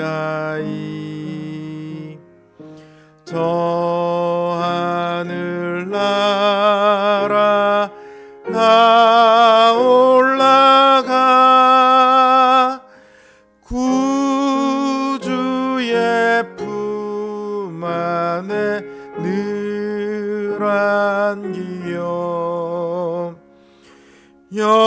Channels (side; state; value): both; identical; correlation 1.00